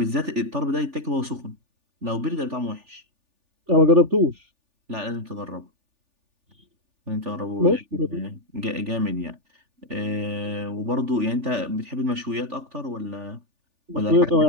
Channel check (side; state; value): left; late; 3.4 ms